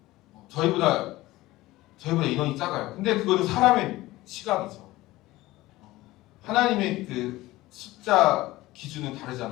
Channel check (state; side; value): quieter; right; 18.0 dB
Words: 저희보다 인원이 작아요. 근데 그거는 사람의 시각이죠. 하나님의 그 숫자 기준은